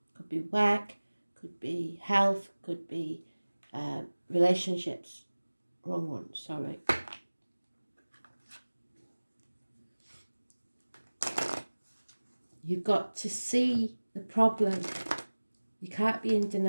Could be work, could be health, could be relationships. Wrong one, sorry. You've got to see the problem. You can't be in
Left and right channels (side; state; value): both; inverted; correlation -1.00